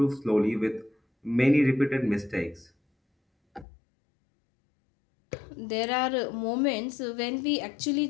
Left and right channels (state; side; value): drops out; right; at 3.7 s